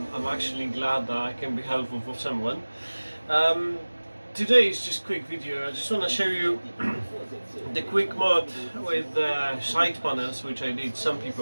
actually glad that I can be helpful for someone. Today is just a quick video. I just want to show you the quick mod with side panels, which I did. Some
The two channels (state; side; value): inverted; both; correlation -1.00